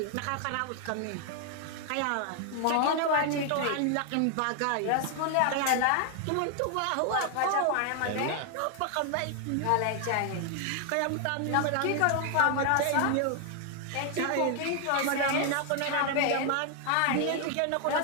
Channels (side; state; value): both; different; correlation 0.00